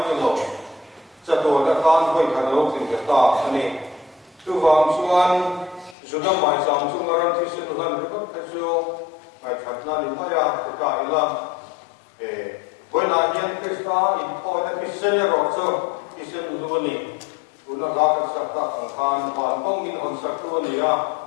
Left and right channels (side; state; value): right; drops out; at 6.0 s